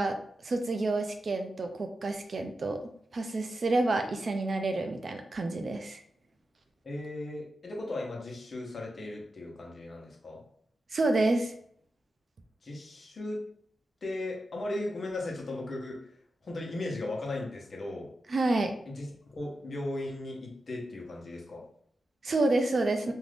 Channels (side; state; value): both; normal; correlation 0.90